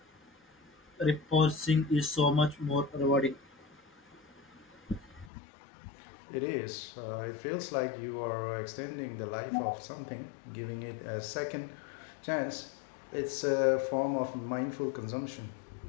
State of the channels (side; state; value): right; drops out; at 5.3 s